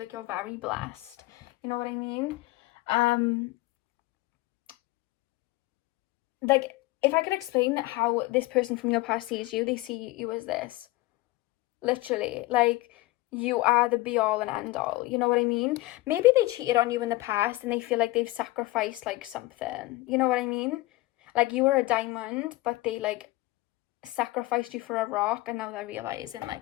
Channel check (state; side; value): quieter; right; 19.7 dB